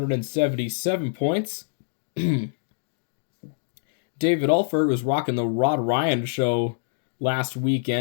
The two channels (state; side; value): silent; right; digital silence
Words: points. David Alford was rocking the Rod Ryan show last